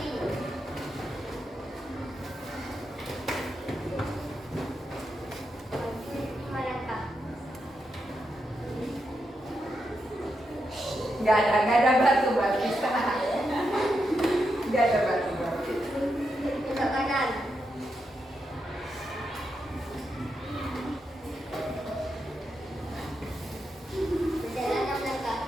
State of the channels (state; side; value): normal; both; correlation 0.84